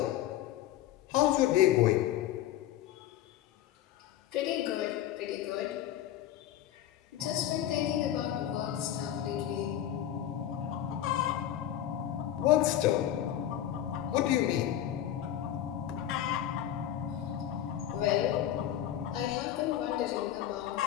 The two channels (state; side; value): quieter; right; 11.9 dB